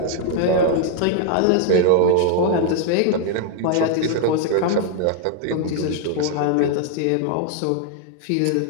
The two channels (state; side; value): different; both; correlation 0.00